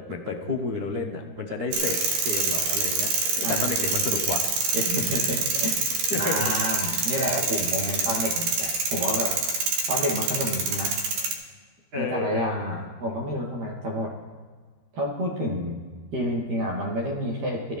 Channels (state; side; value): late; left; 13 ms